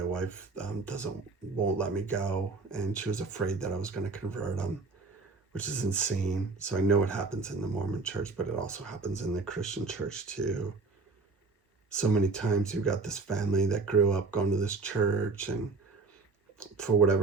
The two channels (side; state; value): left; quieter; 4.0 dB